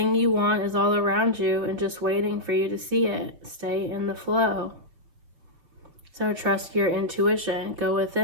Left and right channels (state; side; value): late; left; 5.8 ms